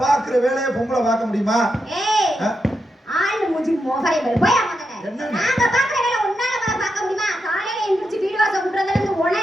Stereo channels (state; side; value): normal; both; correlation 0.85